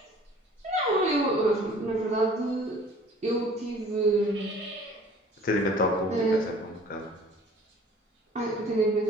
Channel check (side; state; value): both; normal; correlation 0.51